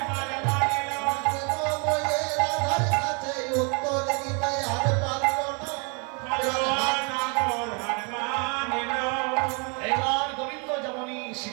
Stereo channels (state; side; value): quieter; left; 35.2 dB